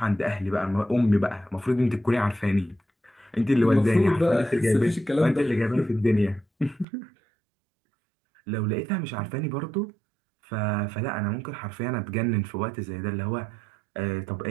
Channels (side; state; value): left; drops out; at 6.9 s